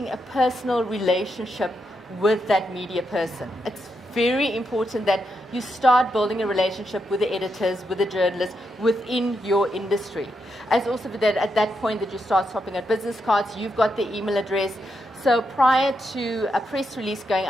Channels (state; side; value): normal; both; correlation 0.83